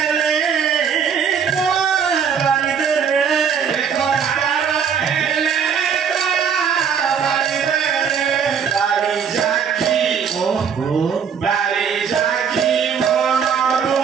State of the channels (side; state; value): left; quieter; 7.1 dB